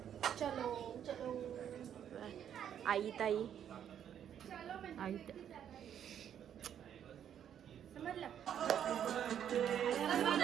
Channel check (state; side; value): quieter; left; 9.4 dB